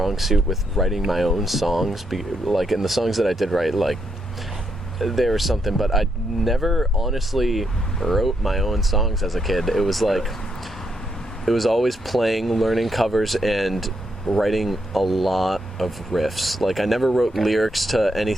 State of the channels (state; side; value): normal; both; correlation 0.78